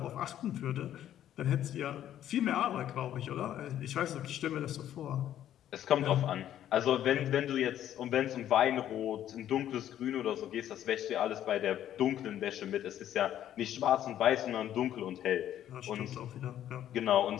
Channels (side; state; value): right; quieter; 11.4 dB